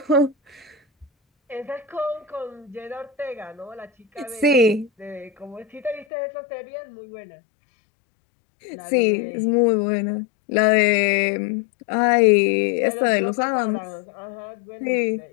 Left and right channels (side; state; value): right; drops out; at 6.1 s